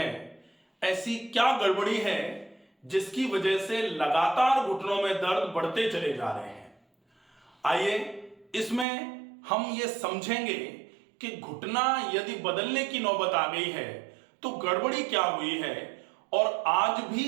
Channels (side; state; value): left; drops out; at 8.8 s